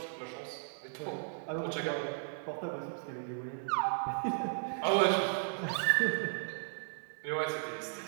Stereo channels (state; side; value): silent; left; digital silence